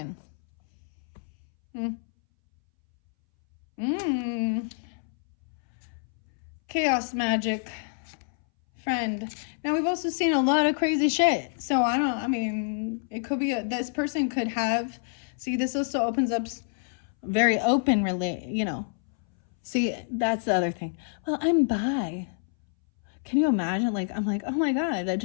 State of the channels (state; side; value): silent; right; 60 dB below the other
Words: Chaos magic. Friend. Now, we've also seen a lot of crazy shit. So, it could be, this person could have, see, this also opens up very open, see, that's the other thing. Well, I'm bi. Can you imagine? Like, I'm like, oh my God, that